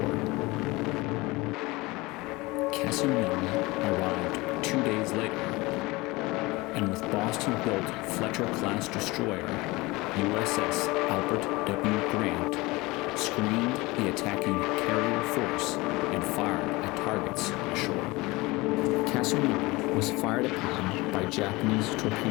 CASSIN YOUNG arrived 2 days later, and with Boston-built Fletcher-class destroyer USS ALBERT W GRANT screened the attacking carrier force and fired at targets ashore. CASSIN YOUNG was fired upon by Japanese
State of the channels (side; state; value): right; quieter; 22.4 dB